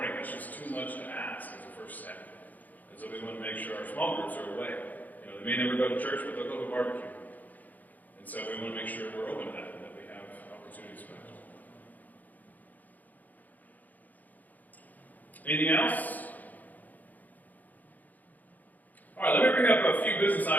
That's just too much to ask as a first step. And so we want to make sure our small groups are away. They may never go to church, but they'll go to a barbecue. And so we want to make sure we're open to that, and that we have opportunities for that. Anything else? All right, let me bring up a few business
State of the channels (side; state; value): right; late; 0.081 ms